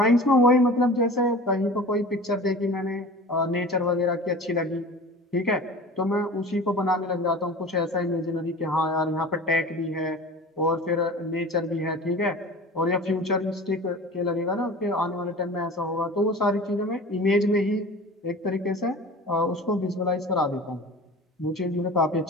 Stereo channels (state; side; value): normal; both; correlation 0.38